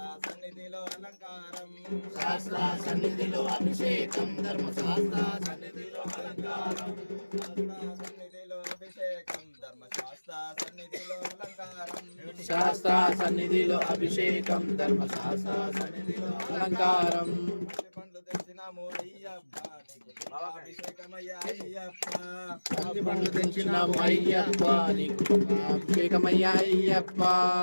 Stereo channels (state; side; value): inverted; both; correlation -1.00